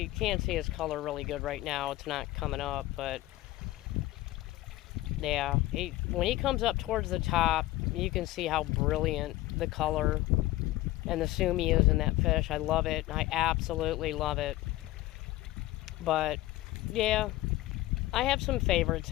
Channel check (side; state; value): right; quieter; 17.0 dB